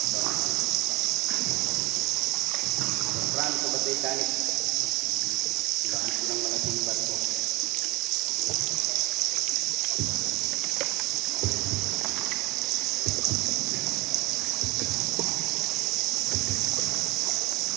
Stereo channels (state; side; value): quieter; left; 22.8 dB